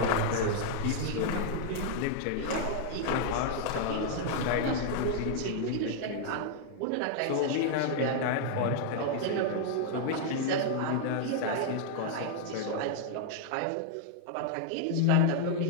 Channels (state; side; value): different; both; correlation -0.01